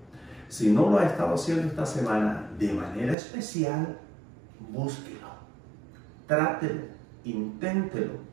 Si no lo ha estado haciendo esta semana de manera especial, búsquelo, trátelo, inténtelo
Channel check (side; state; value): left; drops out; at 3.2 s